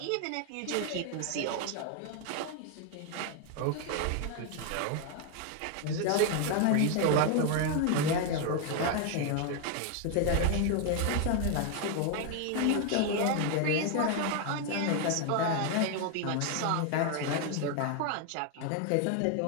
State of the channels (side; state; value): both; different; correlation 0.01